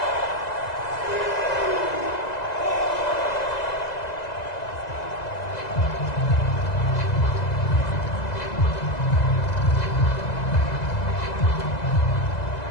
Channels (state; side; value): late; right; 2.0 ms